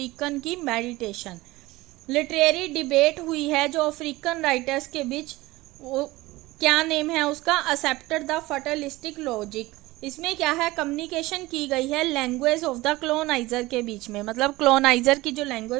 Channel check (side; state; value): left; quieter; 19.6 dB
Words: की मेडिटेशन। लिटरेरी डिबेट हुई है जो अफ्रीकन राइटर्स के बीच, वो क्या नेम है उसका, एक्सेप्टेड द फटलिस्टिक लॉजिक। इसमें क्या है, कम्युनिकेशन की गई है लैंग्वेज ऑफ द क्लोनाइजर के बीच में, मतलब क्लोनाइजर की जो